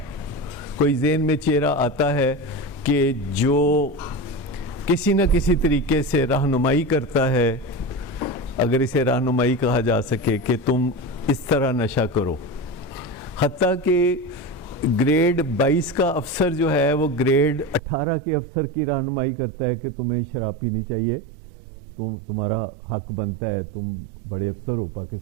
کوئی ذہن میں چہرہ آتا ہے کہ جو کسی نہ کسی طریقے سے رہنمائی کرتا ہے, اگر اسے رہنمائی کہا جا سکے, کہ تم اس طرح نشہ کرو. حتیٰ کہ گریڈ 22 کا افسر جو ہے وہ گریڈ 18 کے افسر کی رہنمائی کرتا ہے کہ تمہیں شراب پینی چاہیے, تمہارا حق بنتا ہے, تم بڑے افسر ہو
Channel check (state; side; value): drops out; left; at 17.8 s